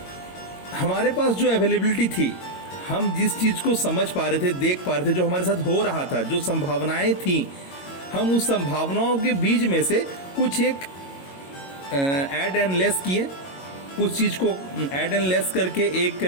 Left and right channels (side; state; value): right; late; 22 ms